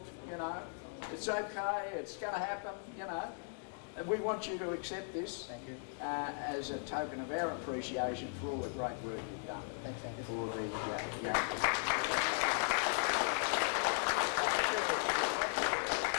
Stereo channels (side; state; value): right; silent; 53 dB below the other